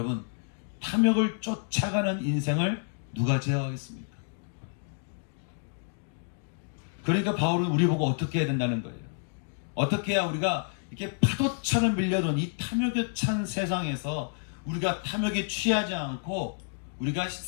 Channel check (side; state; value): right; silent; digital silence